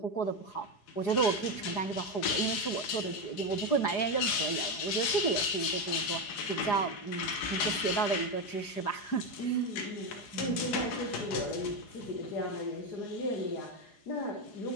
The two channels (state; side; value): late; right; 4.9 ms